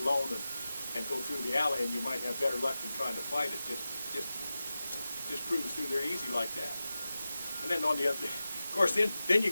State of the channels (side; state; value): both; inverted; correlation -0.94